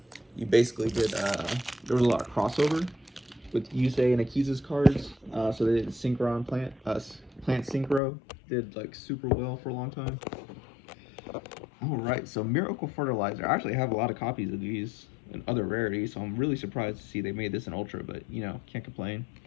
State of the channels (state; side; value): drops out; right; at 8.0 s